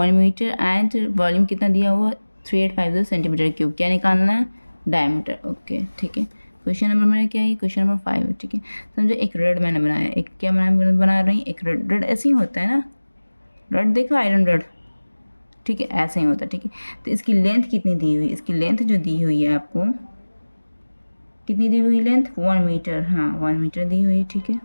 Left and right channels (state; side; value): inverted; both; correlation -1.00